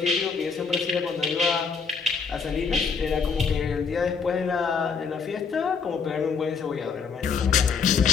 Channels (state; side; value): quieter; right; 5.6 dB